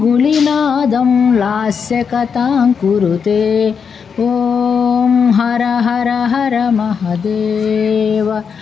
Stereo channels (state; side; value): quieter; right; 6.4 dB